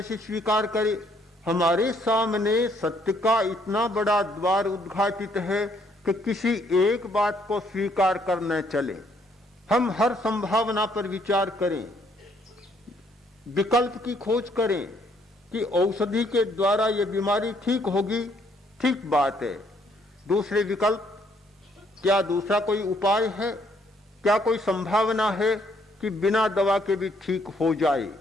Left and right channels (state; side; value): normal; both; correlation 0.68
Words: स्वीकार करे? हमारे सामने सत्य का इतना बड़ा द्वार उद्घाटित है कि किसी एक बात को स्वीकार करने चले। हम हर संभावना पर विचार करें, विकल्प की खोज करें कि औषधि के द्वारा यह बीमारी ठीक होगी, ठीक बात है। दूसरे विकल्प, क्या दूसरा कोई उपाय है? क्या कोई संभावना है कि बिना दवा के भी ठीक हो जाए?